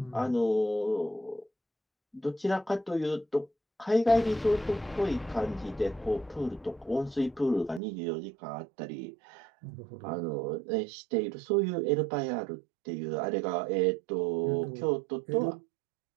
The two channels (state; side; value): drops out; left; at 7.8 s